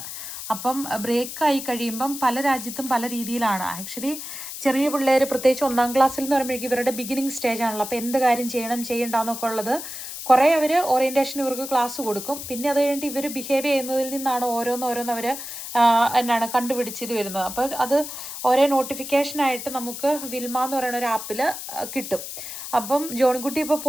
അപ്പം ബ്രേക്കായി കഴിയുമ്പം പല രാജ്യത്തും പല രീതിയിലാണ്. ആക്ച്വലി ചെറിയ പിള്ളേർ പ്രത്യേകിച്ച് 1ാം ക്ലാസ്സിൽ എന്ന് പറയുമ്പോഴേക്കും ഇവരുടെ ബിഗിനിങ് സ്റ്റേജ് ആണല്ലോ. അപ്പോൾ എന്ത് കാര്യം ചെയ്യണ്ടെന്നൊക്കെ ഉള്ളത് കുറേ അവർ ഓറിയൻറ്റേഷൻ ഇവർക്ക് ക്ലാസ് കൊടുക്കും. പിന്നെ അത് കഴിഞ്ഞിട്ട് ഇവർ ബിഹേവ് ചെയ്യുന്നതിൽ നിന്നാണ് ഓരോന്നവർ കണ്ടുപിടിച്ചത് വരുന്നത്. അപ്പോൾ അത് ഒരേ നോട്ടിഫിക്കേഷനായിട്ട് നമുക്ക് വിൽമ എന്ന് പറയുന്ന ഒരു ആപ്പിൽ കിട്ടും. അപ്പം ജോണിക്കുട്ടി ഇപ്പോൾ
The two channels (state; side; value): noise; left; hiss, 9 dB below the sound